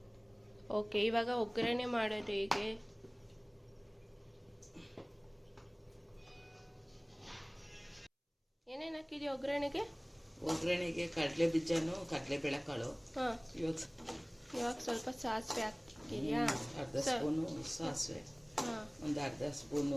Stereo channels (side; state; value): both; identical; correlation 1.00